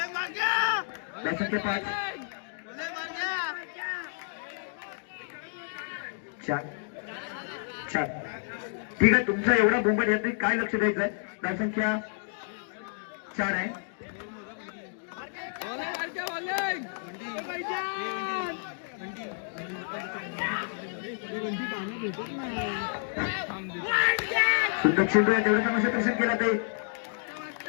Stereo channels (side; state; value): right; silent; digital silence